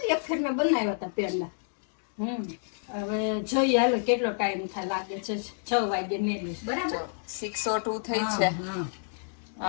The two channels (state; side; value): silent; right; digital silence